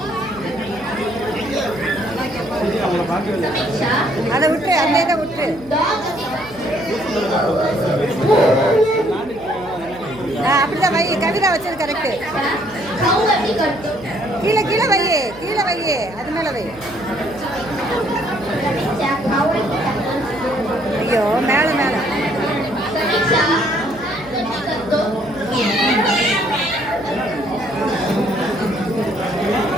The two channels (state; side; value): noise; right; hum, 21 dB below the sound